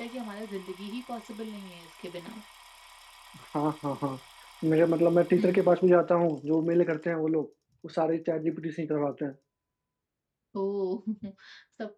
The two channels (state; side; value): identical; both; correlation 1.00